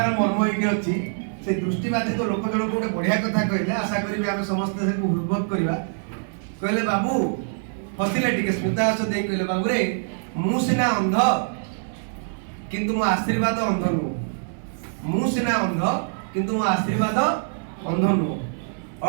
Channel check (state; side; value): silent; left; 62 dB below the other